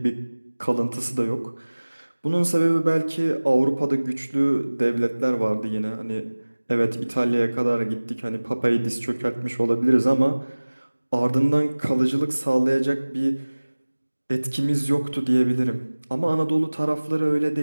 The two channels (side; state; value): both; inverted; correlation -1.00